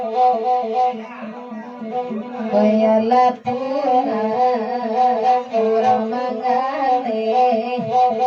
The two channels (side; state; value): both; identical; correlation 1.00